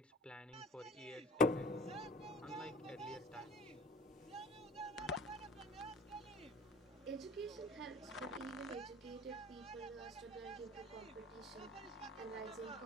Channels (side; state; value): both; normal; correlation 0.45